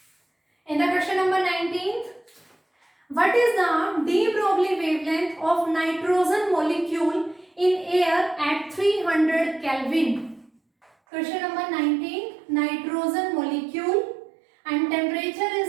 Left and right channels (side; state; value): left; drops out; at 10.9 s